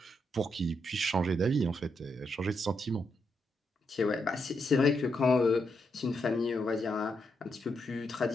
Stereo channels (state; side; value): normal; both; correlation 0.81